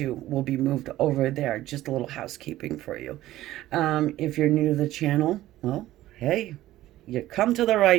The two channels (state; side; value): quieter; left; 15.1 dB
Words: will be moved over there. Just a little housekeeping for you. If you're new to the channel, well, hey, you come to the